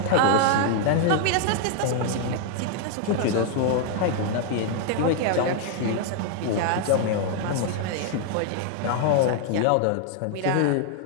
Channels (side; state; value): both; different; correlation 0.00